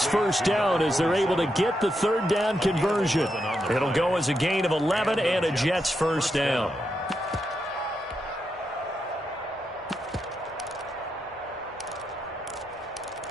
first down as they're able to get the third down conversion. It'll go as a gain of 11 and a Jets first down.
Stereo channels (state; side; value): normal; both; correlation 0.84